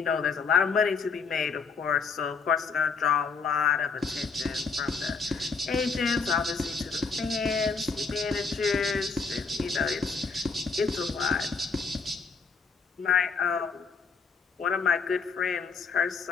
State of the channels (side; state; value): right; quieter; 5.0 dB